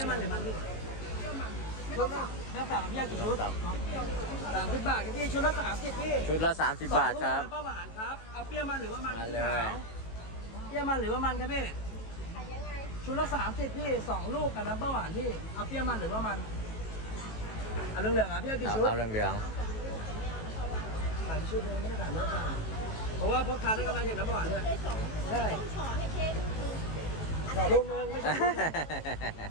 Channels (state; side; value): late; right; 18 ms